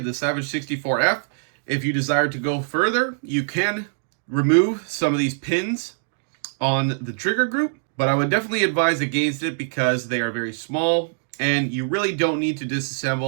the Savage 64F. If you desire to go further, you can remove some of these pins on the trigger group, but I would definitely advise against it because they are very small and you really don't need to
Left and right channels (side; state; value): left; silent; digital silence